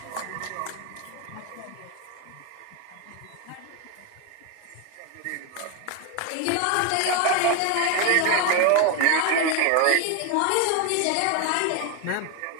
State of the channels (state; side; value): different; both; correlation 0.01